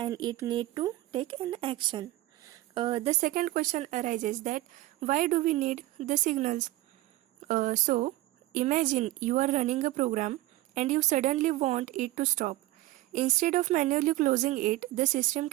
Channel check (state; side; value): quieter; left; 17.3 dB